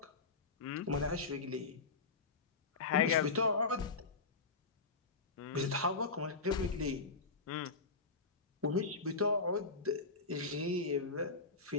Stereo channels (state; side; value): quieter; right; 4.1 dB